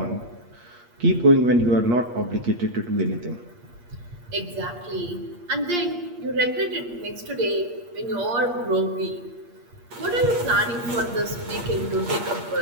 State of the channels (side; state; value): left; late; 8.5 ms